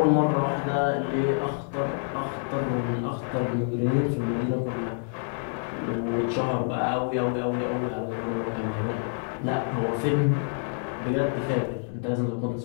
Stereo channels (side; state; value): right; silent; digital silence